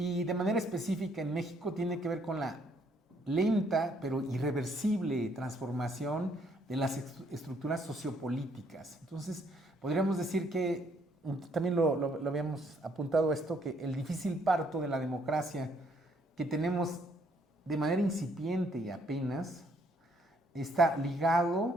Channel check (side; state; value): both; normal; correlation 0.68